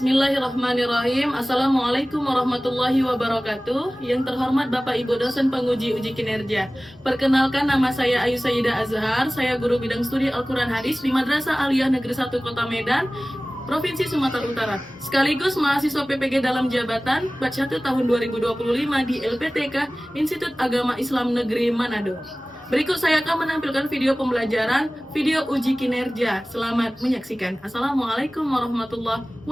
Assalamualaikum warahmatullahi wabarakatuh. Yang terhormat Bapak Ibu dosen penguji uji kinerja. Perkenalkan, nama saya Ayu Sayyidah Azhar. Saya guru bidang studi Al-Quran Hadis di Madrasah Aliyah Negeri 1 Kota Medan, Provinsi Sumatera Utara. Sekaligus mahasiswa PPG dalam jabatan batch 1 tahun 2025 di LPTK Institut Agama Islam Negeri Manado. Berikut saya akan menampilkan video pembelajaran, video uji kinerja. Selamat menyaksikan. Assalamualaikum warahmatullahi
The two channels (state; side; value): normal; both; correlation 0.98